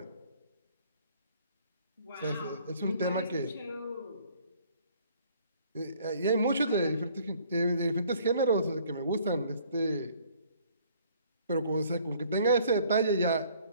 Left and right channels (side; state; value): both; inverted; correlation -0.59